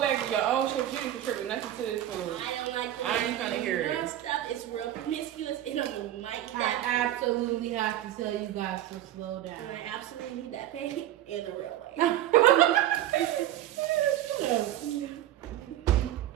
of your own chips. You didn't contribute nothing to this food. I don't like the I ain't trying to hear it. stuff. It's real promiscuous and I'm gonna like I that. absolutely have to tell you guys to slow And down. I absolutely need that pay in the real way.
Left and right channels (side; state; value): left; quieter; 12.9 dB